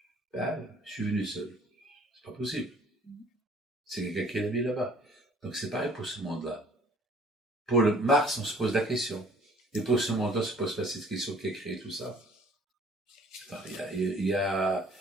Ben, je suis venu seul. C'est pas possible. C'est quelqu'un qui est mis là-bas. Donc c'est pareil pour ce monde-là. Pour le Mars, on se pose la question. Et pour ce monde-là, on se pose pas cette question qui a créé tout ça. Il y a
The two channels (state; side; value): normal; both; correlation 0.55